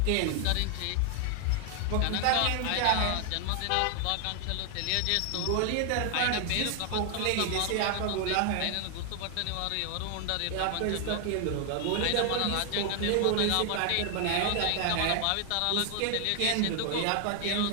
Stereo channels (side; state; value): both; different; correlation 0.00